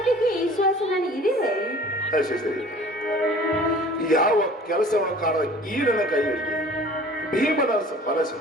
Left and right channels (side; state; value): both; normal; correlation 0.47